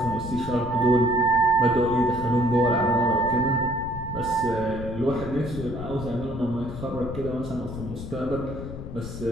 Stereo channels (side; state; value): left; noise; rumble, 9 dB below the sound